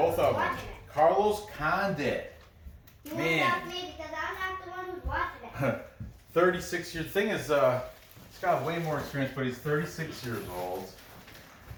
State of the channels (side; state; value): both; identical; correlation 1.00